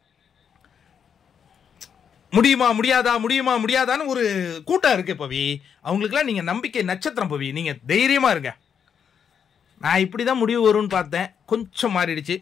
முடியாதான்னு ஒரு கூட்டம் இருக்கு பவி. அவங்களுக்குலாம் நீங்கள் நம்பிக்கை நட்சத்திரம் பவி. நீங்கள் தைரியமாக இருங்க. நான் இப்படி தான் முடிவு வரும்னு பார்த்தேன், கொஞ்சம் மாறிடுச்சு.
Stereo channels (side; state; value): right; quieter; 7.5 dB